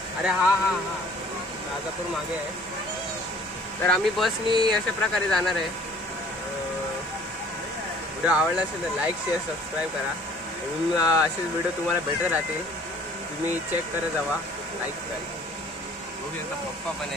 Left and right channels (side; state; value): both; normal; correlation 0.53